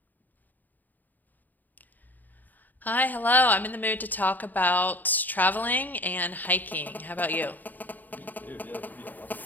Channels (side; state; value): right; late; 0.086 ms